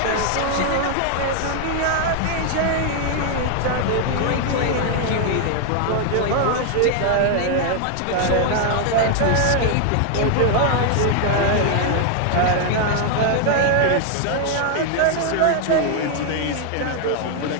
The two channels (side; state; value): both; different; correlation 0.00